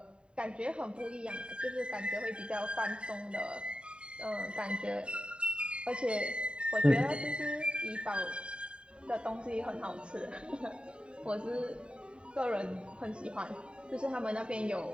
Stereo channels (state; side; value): late; left; 0.052 ms